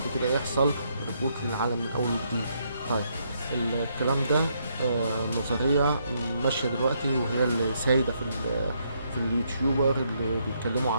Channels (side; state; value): both; inverted; correlation -0.74